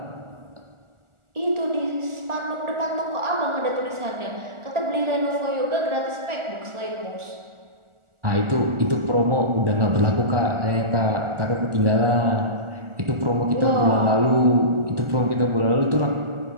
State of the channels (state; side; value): late; left; 1.4 ms